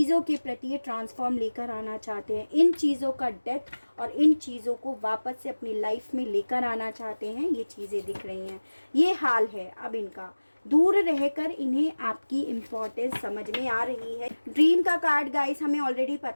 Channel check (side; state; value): both; inverted; correlation -1.00